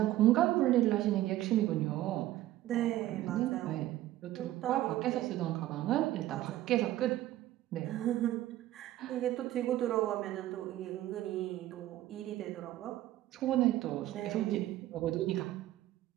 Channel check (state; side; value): quieter; left; 14.6 dB